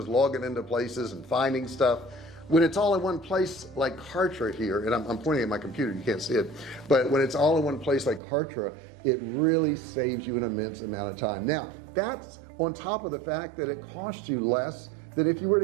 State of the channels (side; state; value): left; drops out; at 8.2 s